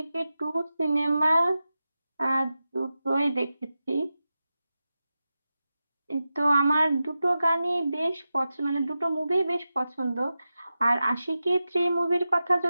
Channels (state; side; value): inverted; both; correlation -0.92